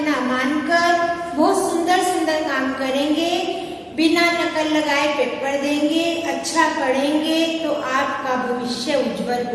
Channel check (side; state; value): both; identical; correlation 1.00